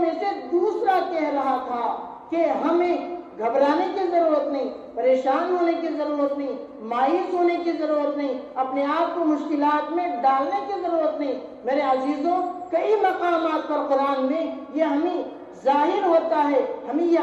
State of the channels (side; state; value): both; identical; correlation 1.00